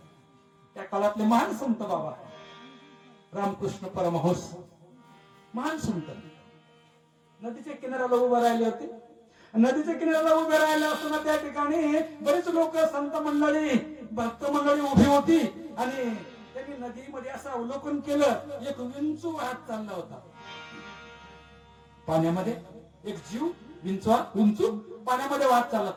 त्या काळातले महान संत बाबा रामकृष्ण परमहंस, महान संत. नदीच्या किनाऱ्याला उभे राहिले होते. नदीच्या किनाऱ्याला उभे राहिले असताना त्या ठिकाणी बरेच लोक, संत मंडळी, भक्त मंडळी उभी होती, आणि त्यांनी नदीमध्ये असं अवलोकन केलं. एक विंचू वाहत चालला होता पाण्यामध्ये. एक जीव विंचू पाण्यामध्ये वाहत चालला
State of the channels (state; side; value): identical; both; correlation 1.00